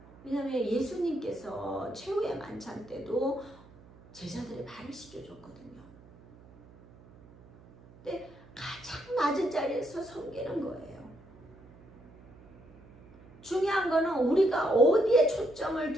왜냐하면 예수님께서 최후의 만찬 때도 제자들의 발을 씻겨줬거든요. 근데 가장 낮은 자리에서 섬기는 거예요. 중요한 거는 우리가 어디에 초점을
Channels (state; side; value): noise; right; hum, 23 dB below the sound